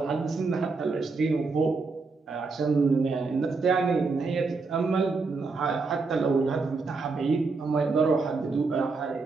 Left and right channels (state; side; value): quieter; left; 4.1 dB